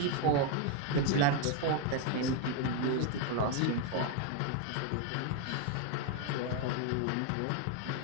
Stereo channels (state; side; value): different; both; correlation 0.01